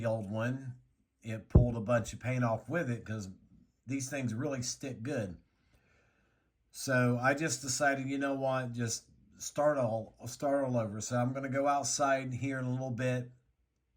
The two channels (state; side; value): identical; both; correlation 1.00